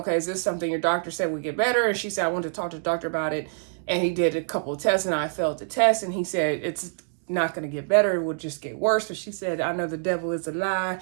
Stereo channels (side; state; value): left; silent; digital silence